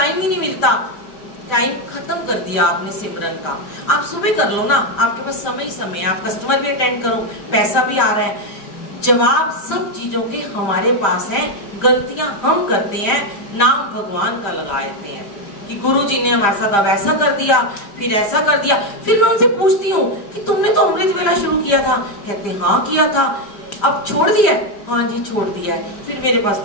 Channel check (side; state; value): right; late; 5.0 ms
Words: ही नहीं मिलता। टाइम खत्म कर दिया आपने सिमरन का। आप सुबह कर लो ना, आपके पास समय ही समय है, आप कस्टमर भी अटेंड करो, पैसा भी आ रहा है। जवाब सब चीजों के हमारे पास है। गलतियां हम करते हैं, नाम भगवान का लगा देते हैं कि गुरुजी ने हमारे साथ अब ऐसा कर दिया, फिर ऐसा कर दिया। फिर मैं उनसे पूछती हूँ कि तुमने तो अमृत वेला शुरू किया था। कहते हैं हाँ किया था। अब छोड़ दिया? हाँ जी छोड़ दिया है। फिर मेरे पास